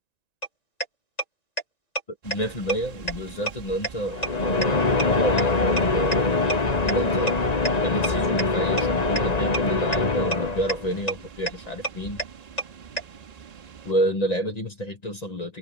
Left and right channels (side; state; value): right; late; 1.9 ms